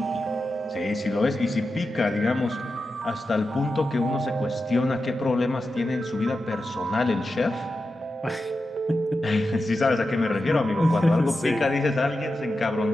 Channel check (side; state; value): both; normal; correlation 0.90